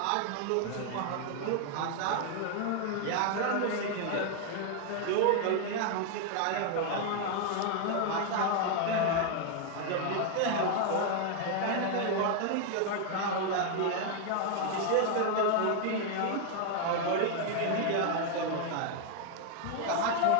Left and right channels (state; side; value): different; both; correlation 0.00